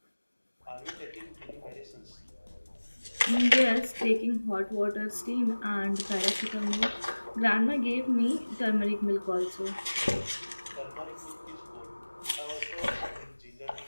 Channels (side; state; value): both; inverted; correlation -1.00